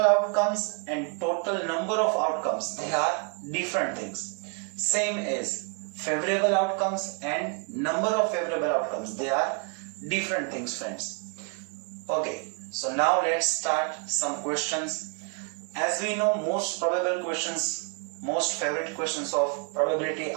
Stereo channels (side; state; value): left; quieter; 37.2 dB